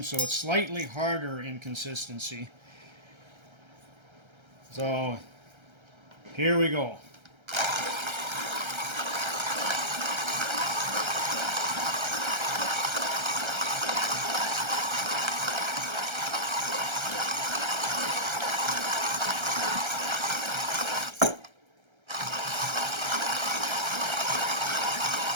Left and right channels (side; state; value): left; late; 1.3 ms